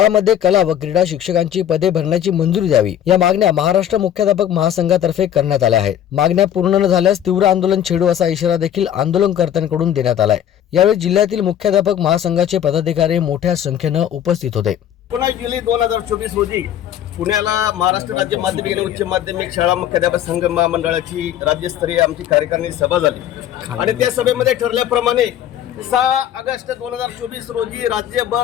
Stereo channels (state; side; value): quieter; right; 10.5 dB